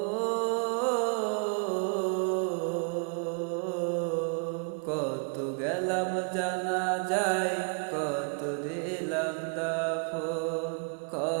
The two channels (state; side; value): quieter; left; 38.7 dB